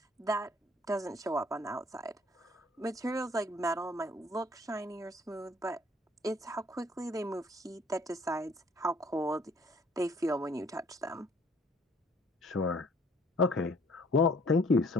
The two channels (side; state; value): both; normal; correlation 0.59